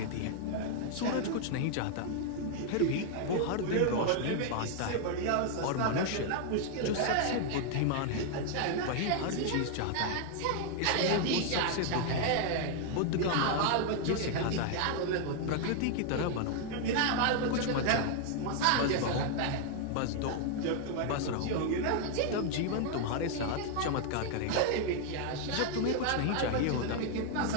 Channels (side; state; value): both; different; correlation 0.00